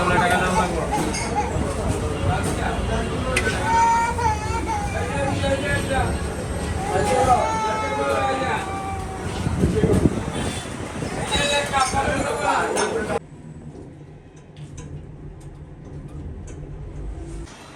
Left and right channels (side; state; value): both; identical; correlation 1.00